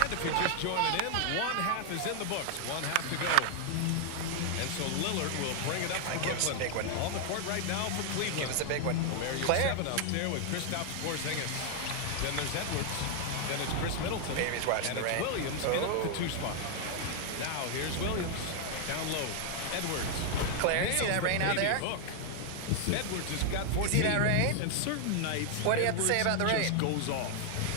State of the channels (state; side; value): different; both; correlation 0.00